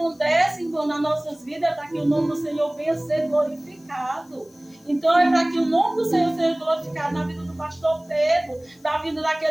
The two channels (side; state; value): left; noise; hiss, 30 dB below the sound